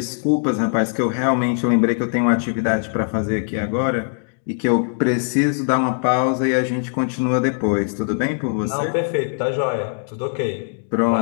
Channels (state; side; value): silent; right; digital silence